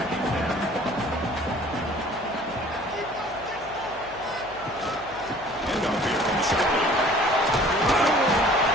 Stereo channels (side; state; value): left; noise; hum, 22 dB below the sound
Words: Handoff here from the shotgun.